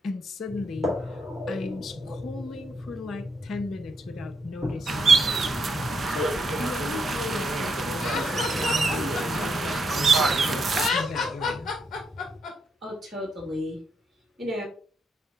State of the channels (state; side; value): normal; both; correlation 0.79